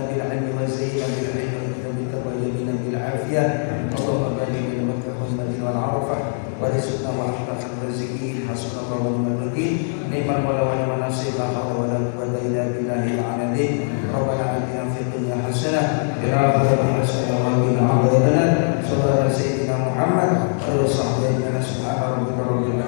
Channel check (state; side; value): silent; right; 58 dB below the other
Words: بالعلم وزينا بالعلم وبك وجبنا بالعافية اللهم بارك بين مكة والمدينة والعرفة ورزقنا وأحسن الرازقين حسبنا الله ونعم الوكيل نعم المولى ونعم النصير لا حول ولا قوة إلا بالله العلي ربنا آتنا في الدنيا حسنة وفي الآخرة حسنة وقنا عذاب النار صلى الله على سيدنا محمد وعلى آله وصحبه أجمعين سبحان ربك رب